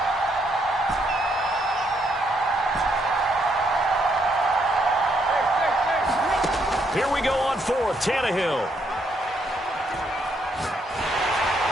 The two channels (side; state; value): both; normal; correlation 0.74